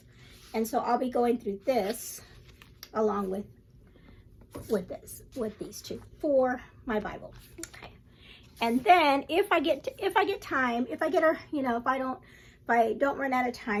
And so I'll be going through this along with these two for my Bible. Okay. And then if I get time, if I don't run out of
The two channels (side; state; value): both; identical; correlation 1.00